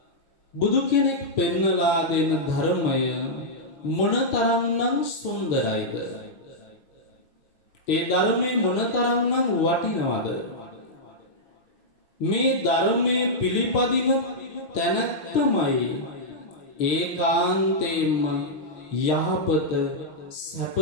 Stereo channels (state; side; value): late; right; 6.4 ms